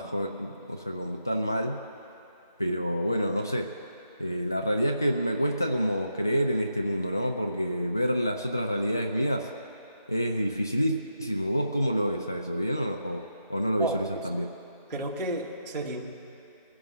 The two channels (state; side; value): inverted; both; correlation -0.83